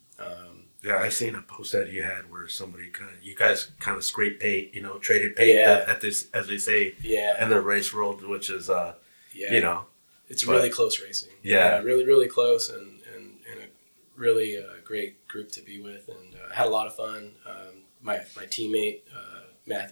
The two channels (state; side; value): inverted; both; correlation -1.00